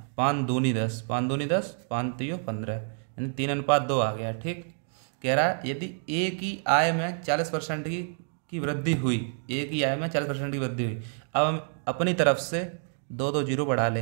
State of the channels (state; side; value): silent; left; 58 dB below the other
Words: 5 दूनी 10, 5 दूनी 10, 5 3 15, यानी 3:2 आ गया, ठीक। कह रहा है यदि ए की आय में 40% की वृद्धि हुई, ए की आय में 40% की वृद्धि हुई, अब हम अपनी तरफ से 2 जीरो बढ़ा